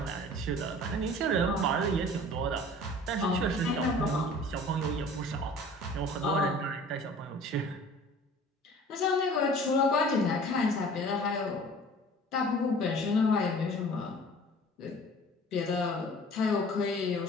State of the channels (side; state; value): both; normal; correlation 0.46